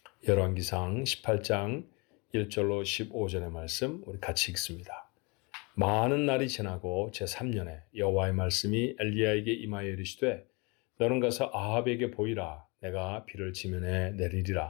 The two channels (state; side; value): quieter; right; 29.1 dB